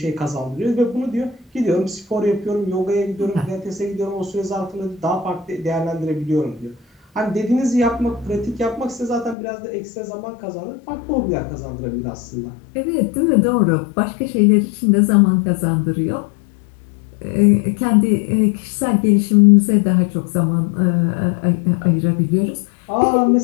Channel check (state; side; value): drops out; right; at 9.3 s